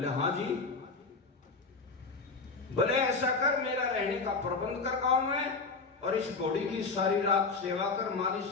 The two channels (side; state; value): right; quieter; 4.2 dB